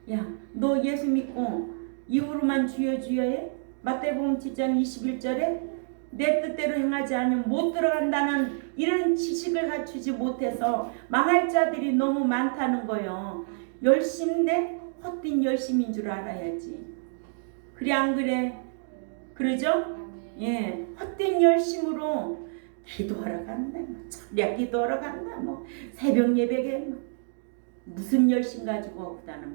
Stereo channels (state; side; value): silent; left; digital silence